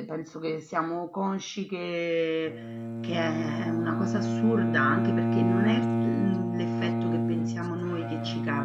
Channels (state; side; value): identical; both; correlation 1.00